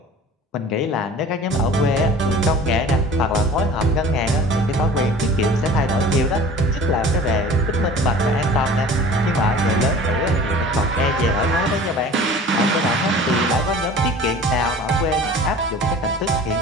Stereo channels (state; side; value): normal; both; correlation 0.43